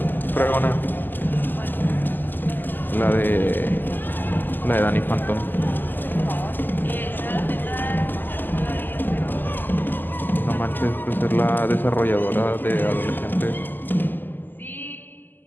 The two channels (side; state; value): right; late; 0.090 ms